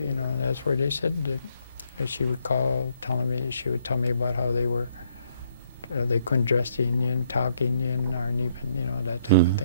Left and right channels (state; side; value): inverted; both; correlation -0.68